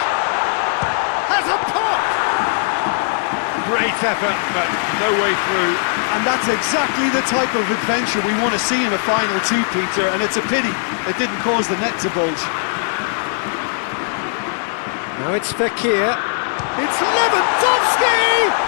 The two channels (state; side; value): silent; right; digital silence